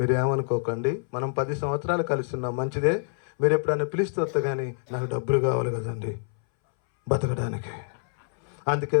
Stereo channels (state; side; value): silent; right; 60 dB below the other